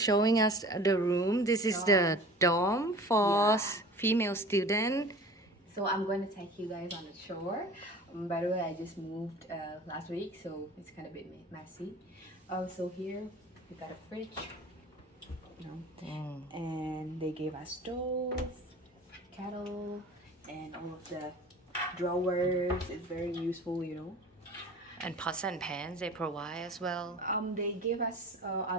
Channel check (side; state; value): both; normal; correlation 0.42